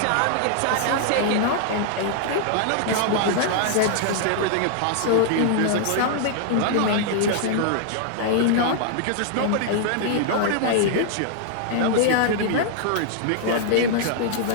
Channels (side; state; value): both; different; correlation -0.01